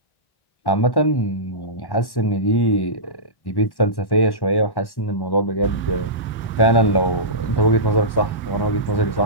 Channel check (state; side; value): late; right; 1.1 ms